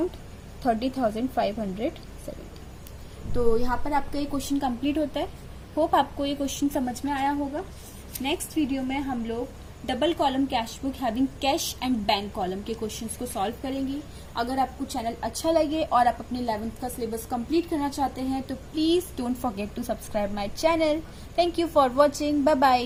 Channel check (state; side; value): identical; both; correlation 1.00